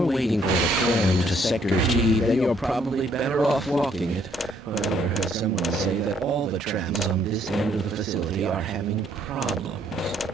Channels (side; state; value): both; normal; correlation 0.67